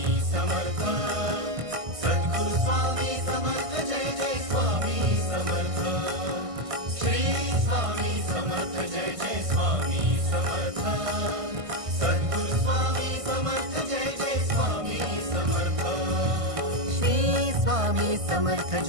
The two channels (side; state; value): left; late; 1.5 ms